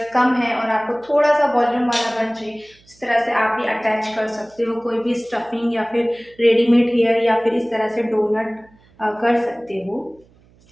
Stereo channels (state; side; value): noise; right; hum, 30 dB below the sound